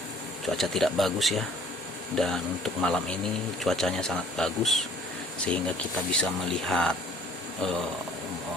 cuaca tidak bagus ya. Dan untuk malam ini cuacanya sangat bagus sehingga kita bisa melihat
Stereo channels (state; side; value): normal; both; correlation 0.54